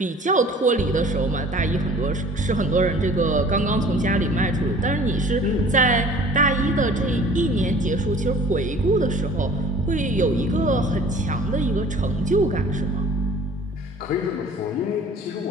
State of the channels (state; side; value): normal; both; correlation 0.48